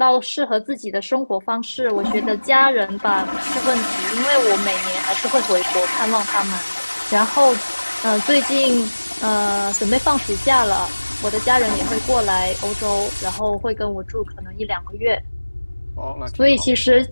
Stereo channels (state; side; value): inverted; both; correlation -1.00